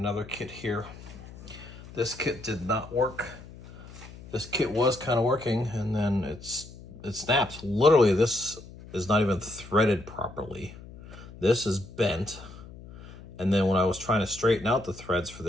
kit here. This kit did not work. This kit was kind of working and then it snaps. Literally, this is not even threaded properly. This is bent. And then when I was trying to straighten out the threads for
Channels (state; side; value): noise; left; hum, 17 dB below the sound